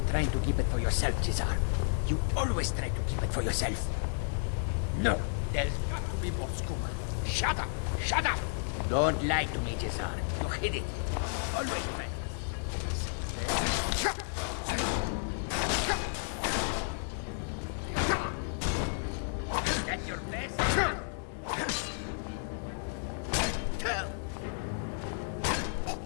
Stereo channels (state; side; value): silent; right; digital silence